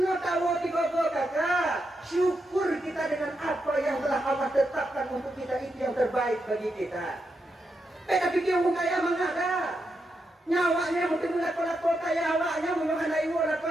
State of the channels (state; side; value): normal; both; correlation 0.84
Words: tahu tiga-tiga kakak syukur kita dengan apa yang telah Allah tetapkan untuk kita itu yang terbaik bagi kita. Tapi dia orang kaya mengada nyawanya mungkin lako-lako kaya awaknya menyokan ibu